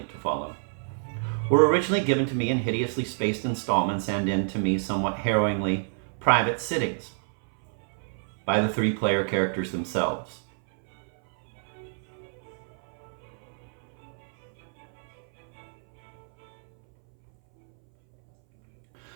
to follow, were originally given to me in hideously spaced installments and in, to me, somewhat harrowingly private sittings by the 3 player characters themselves.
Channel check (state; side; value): silent; left; 60 dB below the other